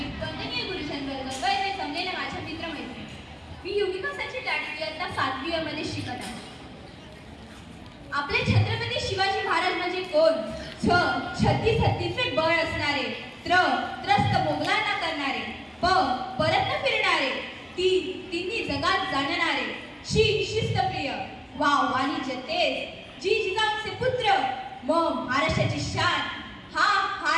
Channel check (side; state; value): both; identical; correlation 1.00